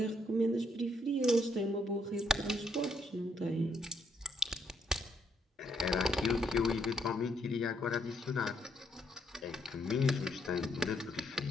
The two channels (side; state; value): both; normal; correlation 0.73